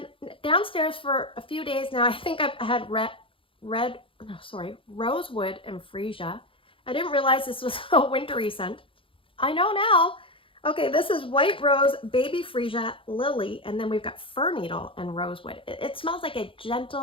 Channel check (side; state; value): right; late; 0.26 ms